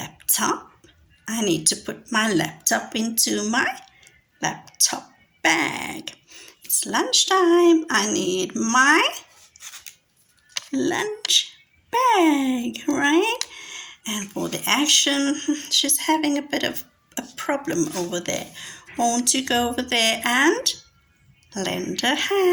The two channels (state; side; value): identical; both; correlation 1.00